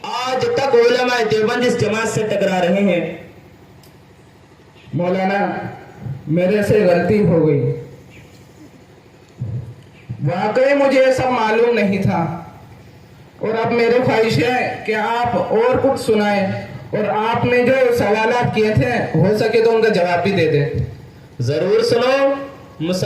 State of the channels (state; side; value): identical; both; correlation 1.00